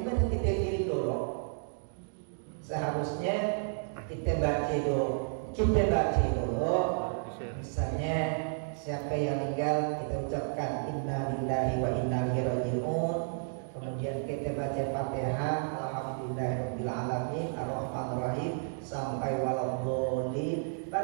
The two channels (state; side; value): silent; left; digital silence